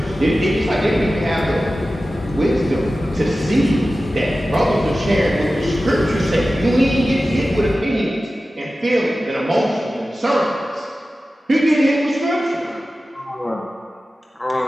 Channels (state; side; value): normal; both; correlation 0.95